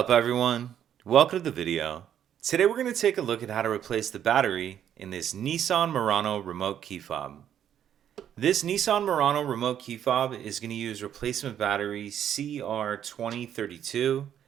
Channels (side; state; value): left; quieter; 9.8 dB